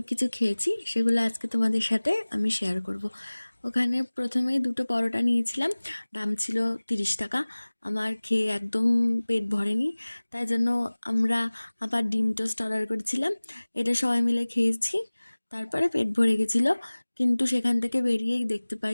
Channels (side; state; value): both; inverted; correlation -1.00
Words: কিছু খেয়েছি। সেগুলো আজকে তোমাদের সাথে আমি শেয়ার করব। ওখানে প্রথমে দুটো পরোটা নিয়েছিলাম, দাম ছিল 30 টাকা। আমার খেয়ে একদম পেট ভরেনি, তাই জন্য আমরা আবার ডিম টোস্ট অর্ডার করেছিলাম। এটা সবাই মিলে খেয়েছি, তারপরে পেট ভরে গেছিলো। কিন্তু সেখান থেকে বেরিয়েই দেখতে পাই